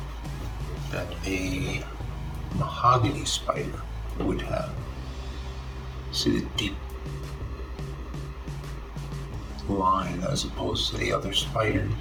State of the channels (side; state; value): both; identical; correlation 1.00